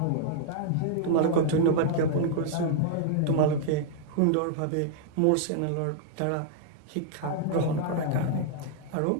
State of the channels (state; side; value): different; both; correlation -0.01